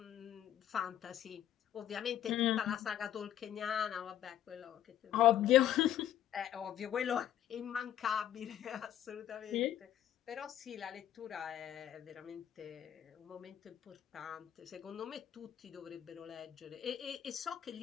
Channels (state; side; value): quieter; right; 11.3 dB